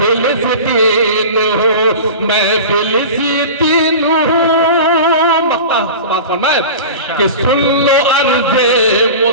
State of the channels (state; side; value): inverted; both; correlation -0.33